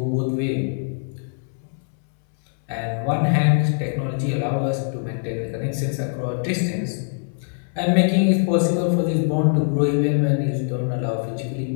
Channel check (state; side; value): silent; right; 64 dB below the other